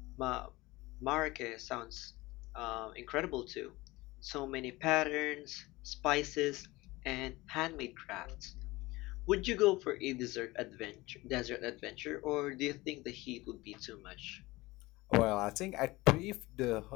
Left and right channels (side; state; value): right; quieter; 20.6 dB